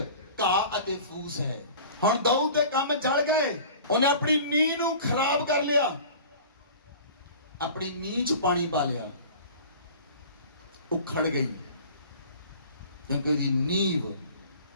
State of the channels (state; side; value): inverted; both; correlation -0.42